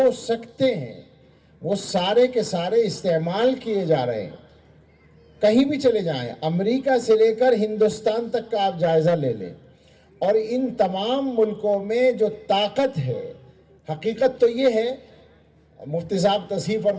سکتے ہیں وہ سارے کے سارے استعمال کیے جا رہے ہیں۔ کہیں بھی چلے جائیں، امریکہ سے لے کر ہندوستان تک کا آپ جائزہ لے لیں، اور ان تمام ملکوں میں جو طاقت ہے، حقیقت تو یہ ہے، مفتی صاحب تصحیح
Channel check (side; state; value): both; identical; correlation 1.00